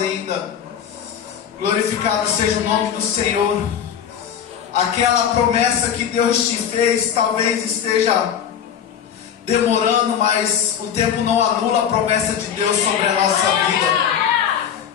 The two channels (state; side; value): quieter; right; 8.6 dB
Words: Glorificado seja o nome do Senhor. Aquela promessa que Deus te fez talvez esteja demorando, mas o tempo não anula a promessa de Deus sobre a nossa vida.